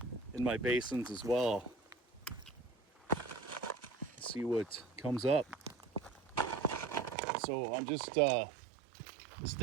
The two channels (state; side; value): drops out; left; at 7.2 s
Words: in my basins as well. See what comes up. So I'm just